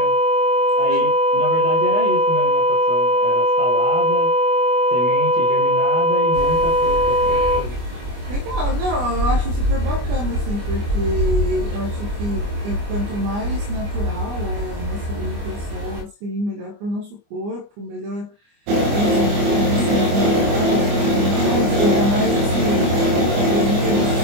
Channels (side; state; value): left; late; 24 ms